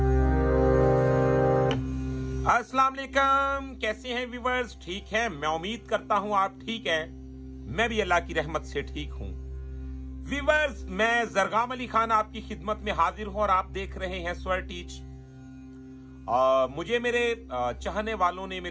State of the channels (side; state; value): both; identical; correlation 1.00